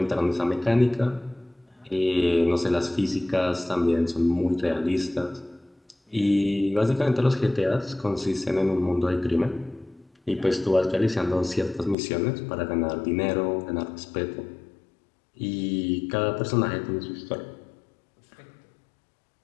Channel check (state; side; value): drops out; right; at 12.0 s